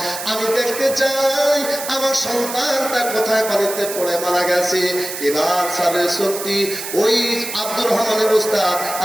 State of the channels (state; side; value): noise; right; hiss, 8 dB below the sound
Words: আমি দেখতে চাই আমার সন্তানটা কোথায় পানিতে পড়ে মারা গেছে। এবার স্যারের সত্যি ওই আব্দুর রহমানের উস্তাদ